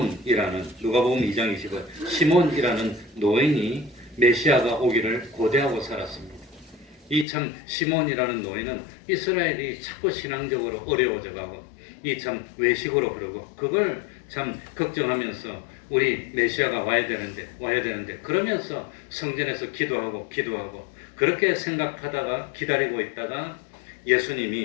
누가복음 2장 20절, 시몬이라는 노인이 메시아가 오기를 고대하고 살았습니다. 이 시몬이라는 노인은 이스라엘이 자꾸 신앙적으로 어려워져가고 외식으로 그러고 그걸 걱정하면서 우리 메시아가 와야 되는데 그러면서 성전에서 기도하고 그렇게 생각하다가 기다리고 있다가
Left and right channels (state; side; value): drops out; right; at 7.2 s